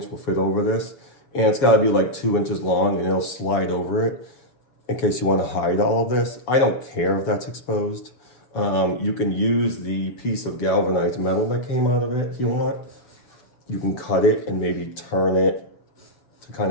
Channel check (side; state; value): right; late; 7.1 ms